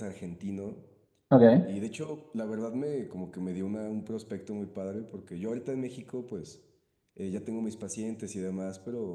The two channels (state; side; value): identical; both; correlation 1.00